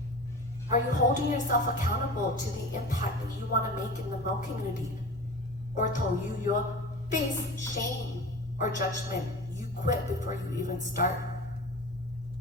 Are you holding yourself accountable to the impact that you want to make in the Hmong community? Or till you face shame or judgment, you quit before you even start?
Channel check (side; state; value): both; normal; correlation 0.34